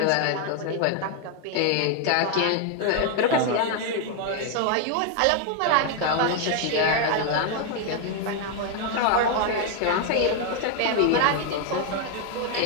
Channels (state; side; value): different; both; correlation 0.01